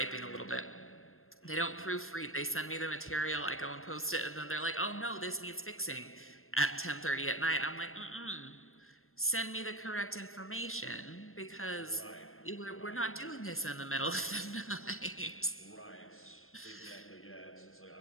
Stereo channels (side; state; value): right; late; 0.62 ms